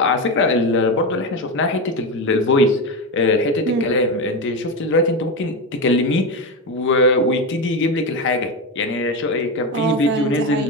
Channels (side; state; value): both; normal; correlation 0.15